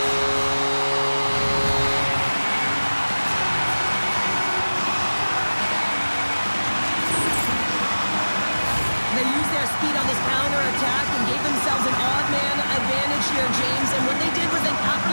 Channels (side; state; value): both; inverted; correlation -1.00